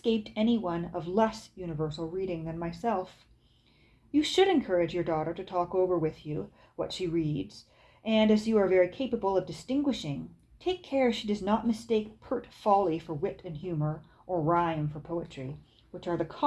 any one of less universal reading than myself. You should encourage your daughter to talk over with you what she reads, and as you are very capable of distinguishing, take care she does not mistake pert folly for wit and humor, or rhyme for poetry, which are the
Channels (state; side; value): identical; both; correlation 1.00